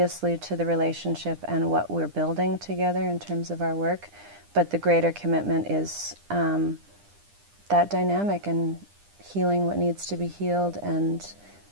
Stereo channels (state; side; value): late; left; 9.9 ms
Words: to the relationship and what we're building together in terms of our work, but the greater commitment is that dynamic and healing what needs to be healed and